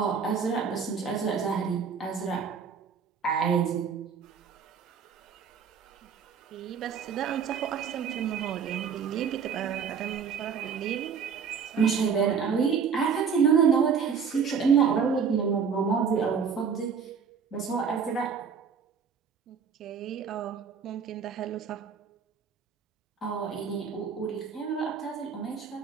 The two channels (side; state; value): left; quieter; 6.5 dB